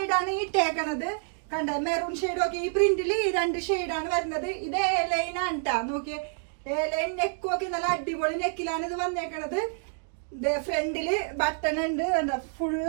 ഇട്ടേക്കണത്. കണ്ട, മെറൂൺ ഷെയ്ഡ് ഒക്കെ ഈ പ്രിന്റില് ഈ 2 ഷെയ്ഡാണ് വരുന്നത്. ഇത് A-ലൈൻ ആണ് ട്ടാ. നോക്കിയേ, A-ലൈൻ നെക്കും ഒക്കെ നല്ല അടിപൊളി നെക്കിലാണ് ഇത് വന്നേക്കണത്. ഫ്രണ്ടില് ബട്ടൺ ഉണ്ട്, എന്താ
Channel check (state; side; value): silent; left; 59 dB below the other